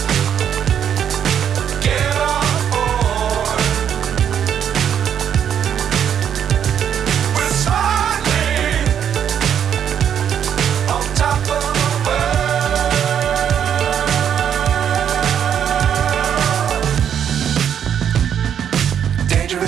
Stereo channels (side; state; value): left; quieter; 8.8 dB